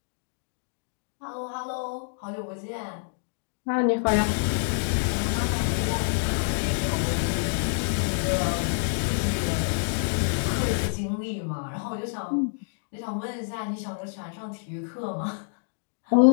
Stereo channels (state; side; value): silent; right; digital silence